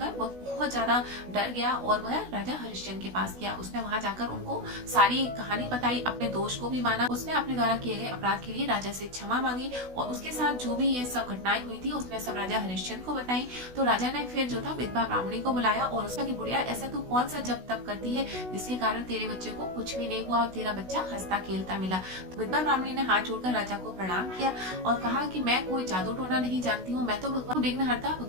वह बहुत ज्यादा डर गया और वह राजा हरिश्चंद्र के पास गया। उसने वहां जाकर उनको सारी कहानी बताई, अपने दोष को भी माना। उसने अपने द्वारा किए गए अपराध के लिए राजा से क्षमा मांगी और उसके साथ जो भी ये सब घटनाएं हुई थी उसने सब राजा हरिश्चंद्र को बताई। तो राजा ने फिर जो था विधवा ब्राह्मणी को बुलाया और उसका कि बुढ़िया ऐसा तू कौन सा जप तप करती है जिसके कारण तेरे बच्चे को कुछ भी नहीं हुआ और तेरा बच्चा हंसता खेलता मिला। तो विधवा ब्राह्मणी ने हाथ जोड़कर राजा को प्रणाम किया और कहा कि मैं कोई जादू टोना नहीं जानती हूँ, मैं तो भगवान विघ्नहर्ता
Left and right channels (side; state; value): left; late; 16 ms